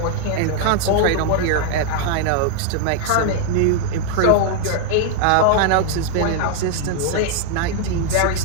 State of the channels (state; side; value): different; both; correlation 0.00